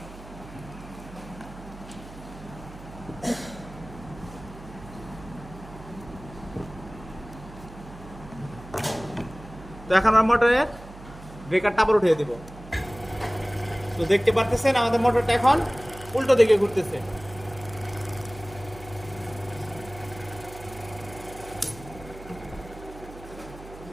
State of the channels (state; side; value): noise; right; hum, 16 dB below the sound